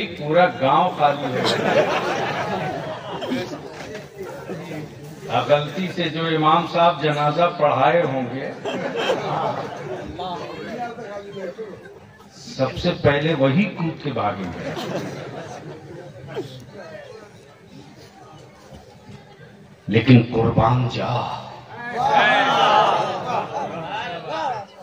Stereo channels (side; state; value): both; identical; correlation 1.00